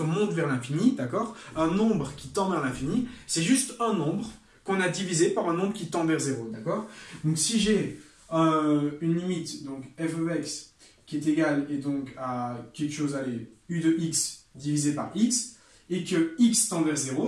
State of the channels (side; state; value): both; identical; correlation 1.00